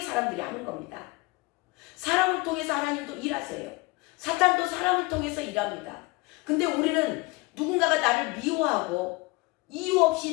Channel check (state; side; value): quieter; right; 24.5 dB